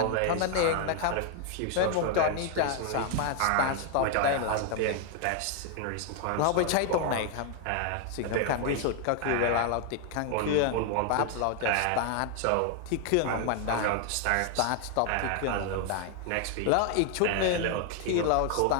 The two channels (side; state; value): both; different; correlation 0.00